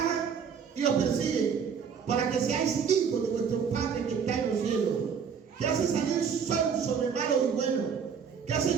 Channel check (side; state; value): left; quieter; 6.8 dB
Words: y os persiguen, para que seáis hijos de vuestro Padre que está en los cielos, que hace salir sol sobre malos y buenos, que hace